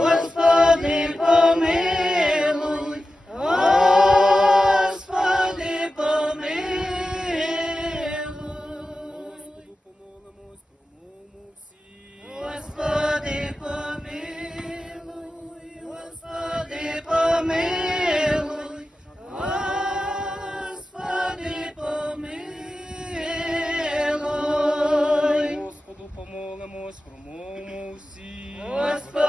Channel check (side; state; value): both; normal; correlation 0.93